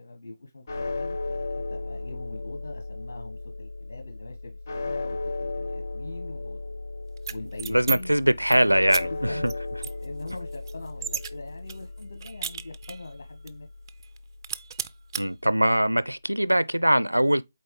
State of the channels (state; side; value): inverted; both; correlation -0.95